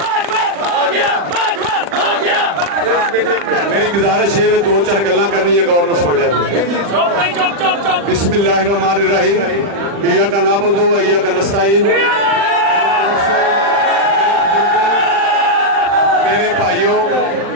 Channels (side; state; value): left; late; 40 ms